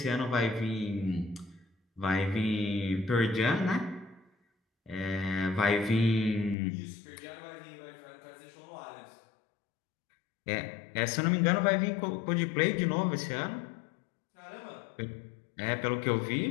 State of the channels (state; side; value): drops out; right; at 6.6 s